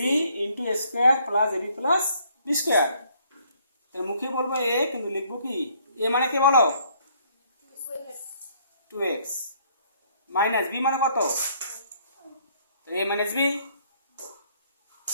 into a square plus ab plus b square তাহলে মুখে বলবো a কিন্তু লিখবো কি a মানে কি বলো 2x মাইনাস b মানে কত a minus b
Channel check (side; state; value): both; inverted; correlation -0.64